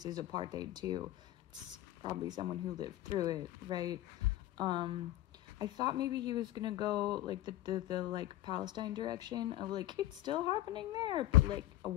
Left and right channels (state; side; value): quieter; right; 15.1 dB